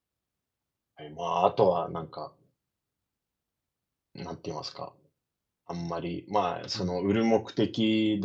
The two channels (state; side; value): identical; both; correlation 1.00